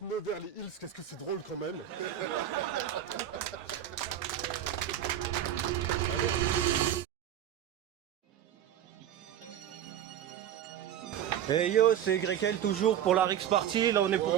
Nevers, les Hills, qu'est-ce que c'est drôle quand même. Hey yo, c'est Grekel toujours pour la Rix Party. Là on est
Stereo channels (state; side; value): quieter; left; 10.6 dB